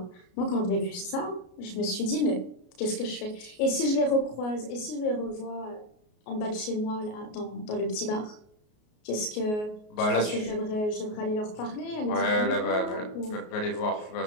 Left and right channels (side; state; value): right; late; 33 ms